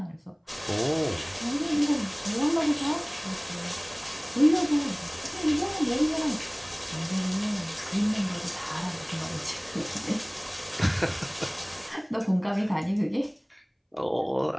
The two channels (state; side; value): identical; both; correlation 1.00